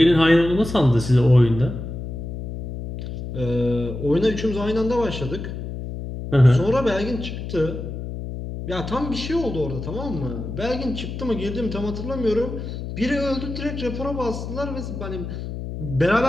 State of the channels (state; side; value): noise; left; hum, 7 dB below the sound